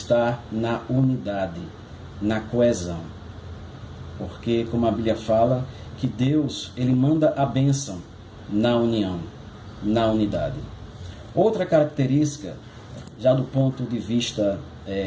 na unidade, na coesão. Porque, como a Bíblia fala, que Deus ele manda a bênção na união, na unidade. Outra característica, já do ponto de vista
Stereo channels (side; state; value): both; identical; correlation 1.00